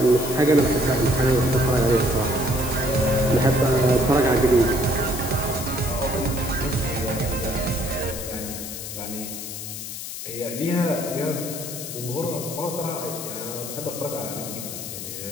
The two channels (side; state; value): left; noise; hiss, 8 dB below the sound